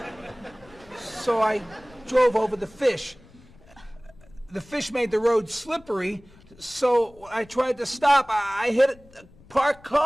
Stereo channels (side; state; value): left; noise; rumble, 25 dB below the sound